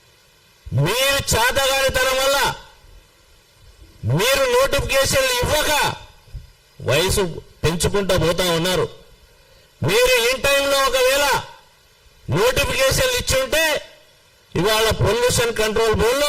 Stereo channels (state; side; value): identical; both; correlation 1.00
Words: మీరు చేతగానితనం వల్ల మీరు నోటిఫికేషన్లు ఇవ్వక వయసు పెంచుకుంటూ పోతా ఉన్నారు. మీరు ఇన్ టైంలో ఒకవేళ నోటిఫికేషన్లు ఇచ్చుంటే ఇవాళ పొల్యూషన్ కంట్రోల్